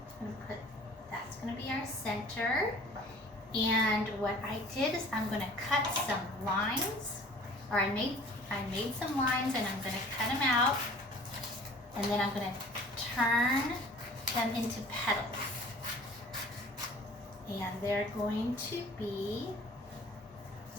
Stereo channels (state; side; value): normal; both; correlation 0.48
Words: I'm going to put, that's going to be our center. And what I did is I'm going to cut some lines, or I made some lines and I'm going to cut them out, and then I'm going to turn them into petals. And they're going to be